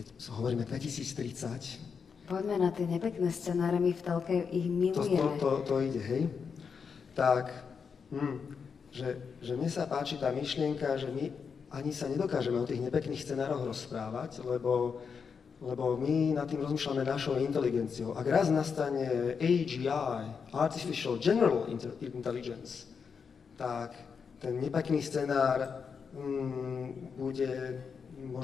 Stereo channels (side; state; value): right; quieter; 6.0 dB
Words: hovoríme 2030. Poďme na tie nepekné scenáre, my v telke ich milujeme. To ide, hej? Tak, že mne sa páči tá myšlienka, že my ani sa nedokážeme o tých nepekných scenároch rozprávať, lebo my nad tým rozmýšľame našou inteligenciou. Ak raz nastane AGI, Artificial General Intelligence, tak ten nepekný scenár